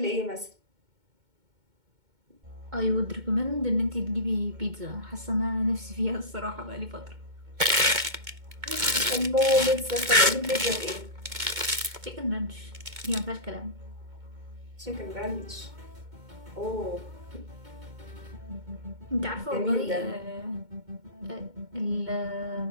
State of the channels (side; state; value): left; late; 2.2 ms